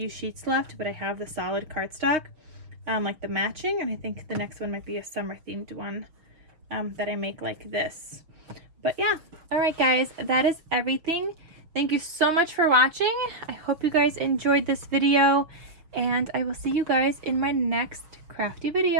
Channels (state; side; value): late; left; 6.4 ms